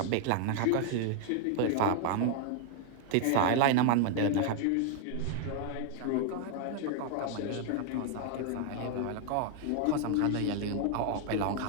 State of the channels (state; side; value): different; both; correlation 0.00